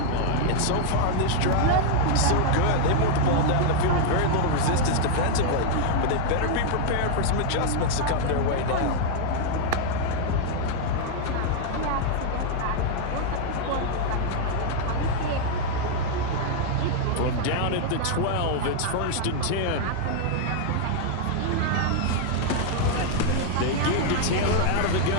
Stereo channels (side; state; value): both; different; correlation 0.00